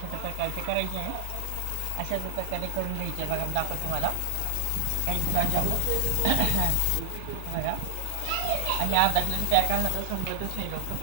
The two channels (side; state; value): both; different; correlation 0.00